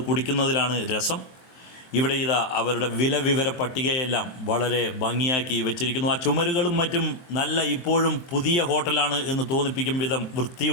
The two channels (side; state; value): right; late; 23 ms